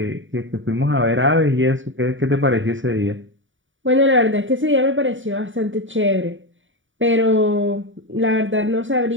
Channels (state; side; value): late; left; 0.56 ms